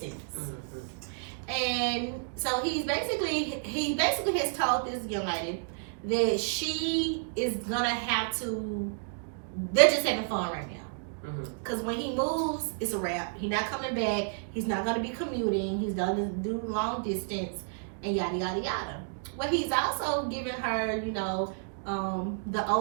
And so he basically has told this young lady that she is gonna have to. They're just having fun right now, because when he moves, it's a wrap. He's not coming back. He's not gonna be commuting. He's gonna do long distance and yada yada yada. Well, he's also giving her, the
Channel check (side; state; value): left; silent; digital silence